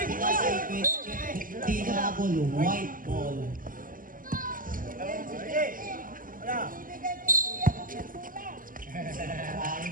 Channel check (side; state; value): left; late; 0.40 ms